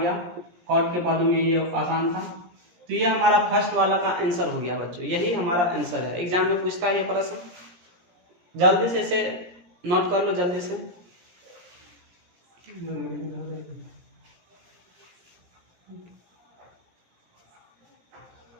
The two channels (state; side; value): late; left; 17 ms